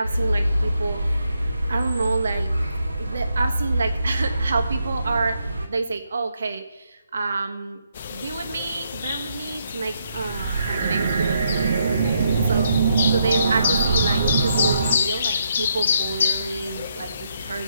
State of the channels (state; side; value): inverted; both; correlation -0.77